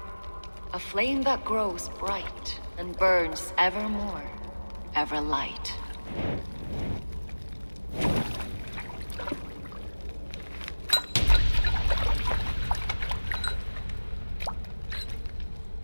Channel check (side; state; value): both; inverted; correlation -1.00